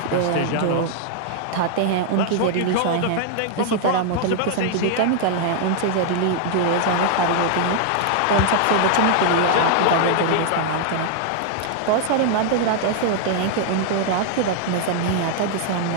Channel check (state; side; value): different; both; correlation 0.00